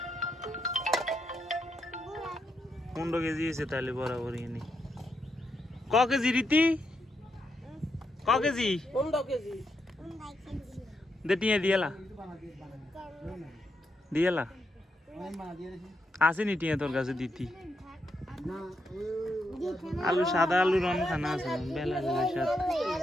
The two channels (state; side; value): normal; both; correlation 0.81